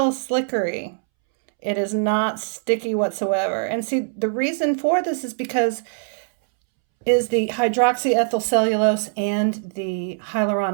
slickery. It is not sticky whatsoever. And see, the reason for this is because is the hydroxyethyl cellulose and the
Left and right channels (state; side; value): silent; left; 64 dB below the other